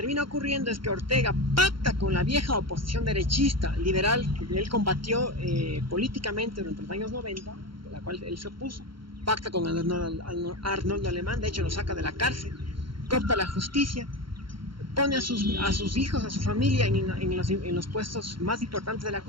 ocurriendo es que Ortega pacta con la vieja oposición derechista liberal que él combatió políticamente durante los años 90, de la cual él se opuso, pacta con Arnoldo Alemán, de hecho lo saca de la cárcel, coopta la justicia, pone a sus hijos, a su familia en los puestos más importantes de la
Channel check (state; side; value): late; left; 0.73 ms